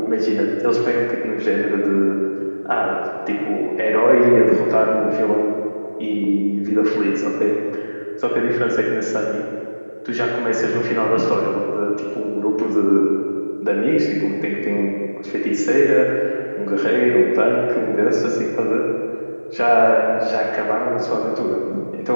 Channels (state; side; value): inverted; both; correlation -1.00